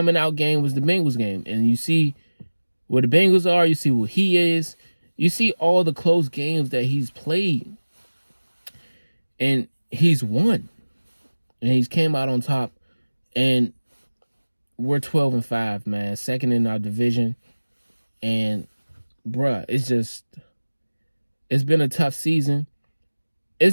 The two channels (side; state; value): both; inverted; correlation -1.00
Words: out game was the Bengals game. And you see where the Bengals are. You see what he is. You see all the close games that he's played. And he's won. And he's came out on top. And we're 12-5, man. Second in our division. And, bruh, it's been a tough season.